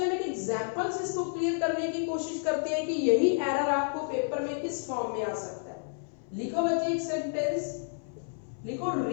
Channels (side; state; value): right; silent; 58 dB below the other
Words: हम एक एग्जांपल से इसको क्लियर करने की कोशिश करते हैं कि यही एरर आपको पेपर में किस फॉर्म में आ सकता है। लिखो बच्चे एक सेंटेंस, लिखो